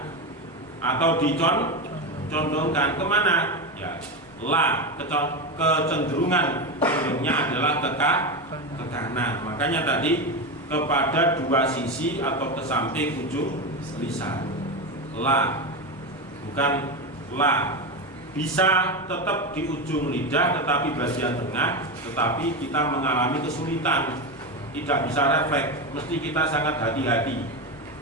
atau dicondongkan kemana? Ya, la, kecenderungan adalah ke kanan. Makanya tadi kepada dua sisi atau ke samping ujung lisan. La, bukan la. Bisa tetap di ujung lidah tetapi bagian tengah, tetapi kita mengalami kesulitan, tidak bisa refleks, mesti kita sangat hati-hati.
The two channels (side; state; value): both; normal; correlation 0.16